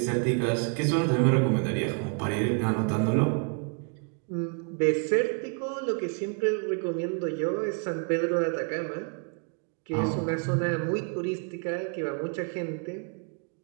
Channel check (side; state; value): left; quieter; 38.2 dB